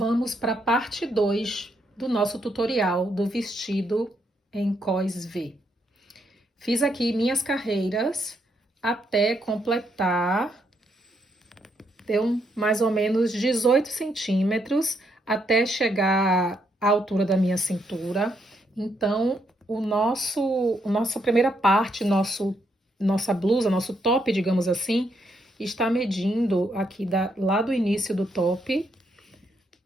para a parte 2 do nosso tutorial do vestido em cos V. Fiz aqui minhas carreiras até completar, deu mais ou menos 18 centímetros até chegar à altura da minha cintura. Então, nossa primeira parte, nossa blusa, nosso top, digamos assim, está medindo aqui lá do início do top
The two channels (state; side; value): normal; both; correlation 0.76